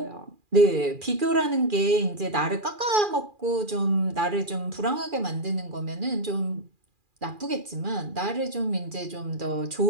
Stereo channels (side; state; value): left; late; 2.4 ms